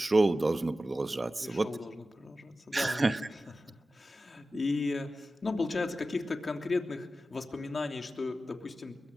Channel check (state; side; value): normal; both; correlation 0.94